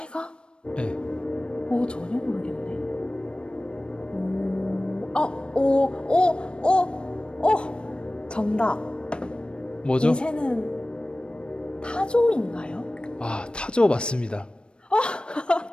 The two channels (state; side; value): late; right; 0.055 ms